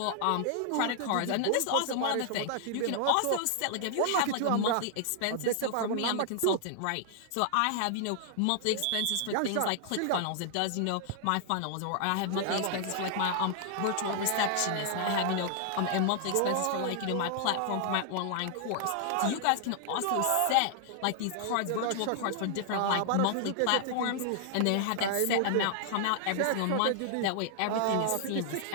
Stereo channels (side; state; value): both; different; correlation 0.00